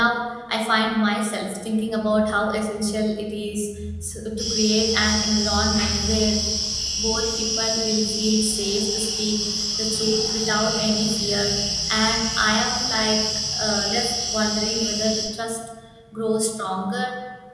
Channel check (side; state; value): both; identical; correlation 1.00